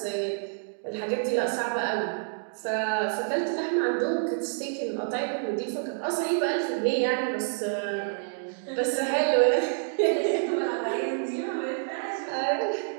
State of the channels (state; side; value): silent; left; digital silence